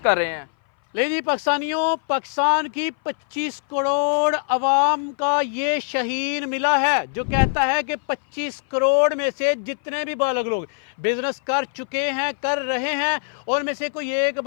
कर रहे हैं। ले जी पाकिस्तानियों, पाकिस्तान की 25 करोड़ अवाम का ये शहीन मिला है जो कहता है कि 25 करोड़ में से जितने भी बालग लोग बिजनेस कर चुके हैं, कर रहे हैं, और में से कोई एक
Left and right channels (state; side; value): silent; right; 59 dB below the other